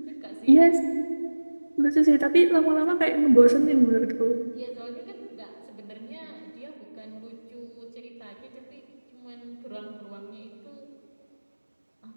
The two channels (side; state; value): both; inverted; correlation -1.00